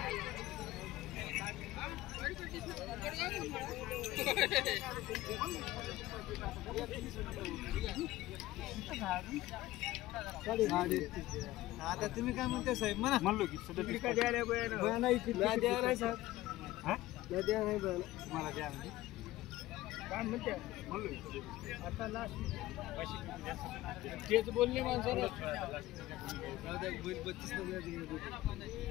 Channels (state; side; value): quieter; right; 16.7 dB